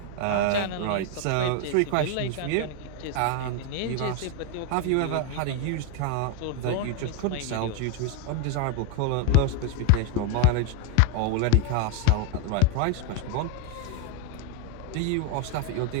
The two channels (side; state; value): both; different; correlation 0.02